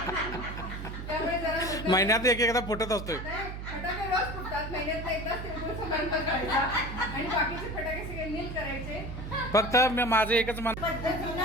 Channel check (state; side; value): noise; right; hum, 8 dB below the sound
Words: त्यामुळे जरा महिन्यात एकदा फुटत असतोय। फटाके रोज फुटतात, महिन्यात एकदाच तिळगुळ समारंभ करायचा आणि बाकीचे फटाके सगळे नील करायचे। फक्त माझं एकच